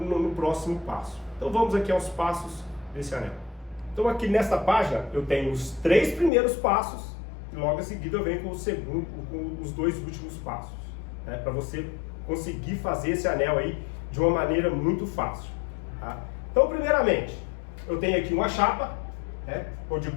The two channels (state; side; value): drops out; right; at 6.3 s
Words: próximo passo. Então vamos aqui aos passos desse anel. Então aqui nesta página eu tenho os 3 primeiros passos e logo em seguida eu venho com os 2 últimos passos, né, para você conseguir fazer esse anel aí de uma maneira muito fácil. Tá? Então primeiramente eu tenho aqui uma chapa, né, ou de